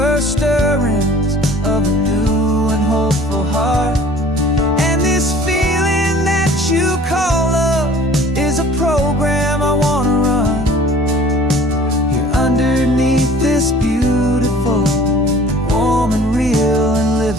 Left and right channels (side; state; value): both; normal; correlation 0.49